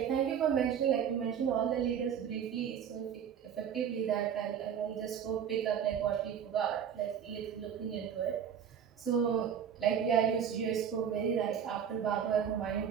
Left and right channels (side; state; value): left; quieter; 8.2 dB